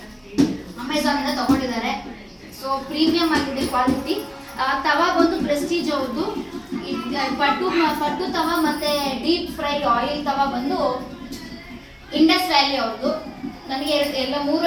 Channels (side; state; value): both; identical; correlation 1.00